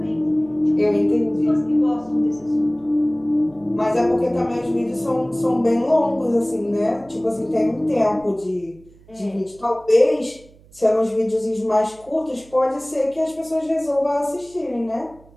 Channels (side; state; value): right; noise; hum, 26 dB below the sound